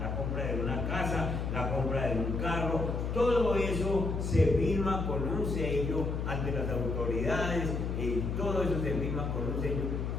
la compra de una casa, la compra de un carro, todo eso se firma con un sello ante las autoridades, y todo eso se firma con un sello.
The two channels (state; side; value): noise; left; hum, 2 dB below the sound